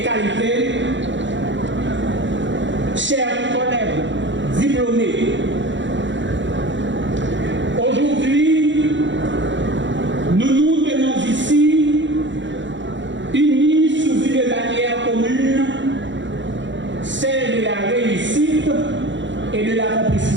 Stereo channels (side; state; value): left; late; 0.54 ms